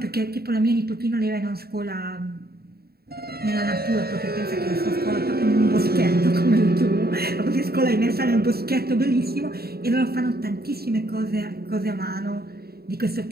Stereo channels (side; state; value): left; late; 0.45 ms